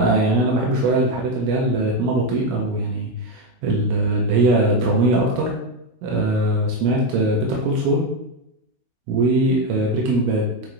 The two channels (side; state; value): left; late; 16 ms